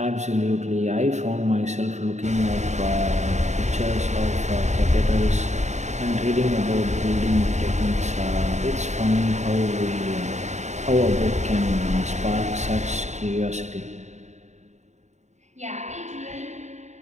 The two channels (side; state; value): left; late; 0.34 ms